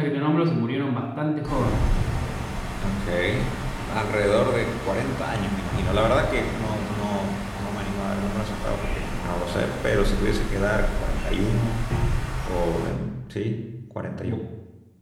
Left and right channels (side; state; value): both; identical; correlation 1.00